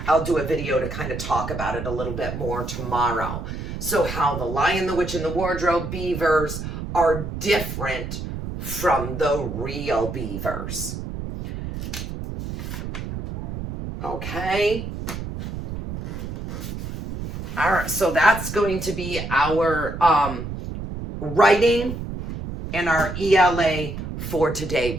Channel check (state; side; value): noise; right; rumble, 7 dB below the sound